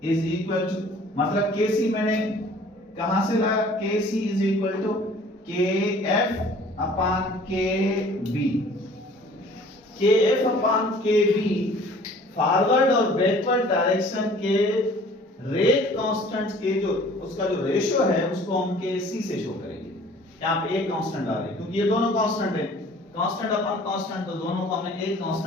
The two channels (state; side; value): normal; both; correlation 0.51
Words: is equal to, मतलब KC मैंने कहां से लाया? KC is equal to KF upon KB. KF upon KB forward और बैकवर्ड डायरेक्शन के रेट कांस्टेंट्स के जो उसका जो रेशियो है उसको हम KC से शो करेंगे. यहाँ पे एक कांस्टेंट आ रही है क्योंकि ये दोनों कांस्टेंट है. कांस्टेंट अपॉन कांस्टेंट, तो दोनों को हमने एक